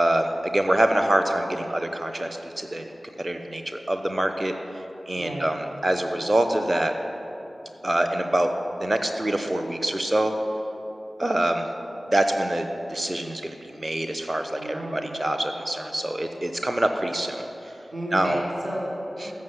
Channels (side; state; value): both; normal; correlation 0.97